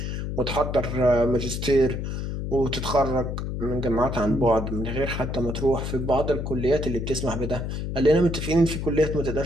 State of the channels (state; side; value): noise; left; hum, 4 dB below the sound